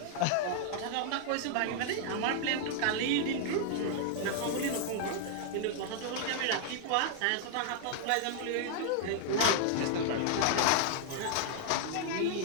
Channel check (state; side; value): different; both; correlation -0.01